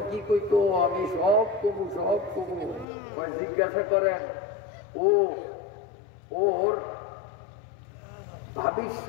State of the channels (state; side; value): drops out; right; at 2.9 s